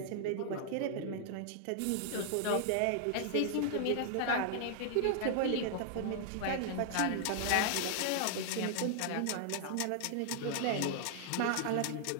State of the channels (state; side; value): different; both; correlation -0.01